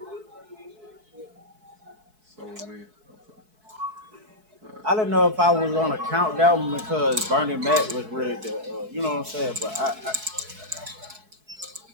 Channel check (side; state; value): left; late; 4.6 ms